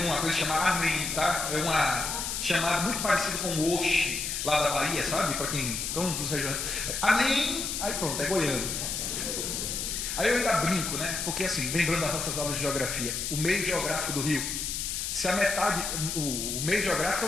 uma coisa chamada amém, tá? É uma chamada muito parecida com o oxe, lá da Bahia, sabe? Para quem estão dos regiões. Amém, aí pronto, é goiano. Aí eu ainda brinco, né? Porque assim, lembrando das nossas aulas de geografia, o meio geográfico do Rio, se a metade, o meio geográfico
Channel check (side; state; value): left; noise; hiss, 3 dB below the sound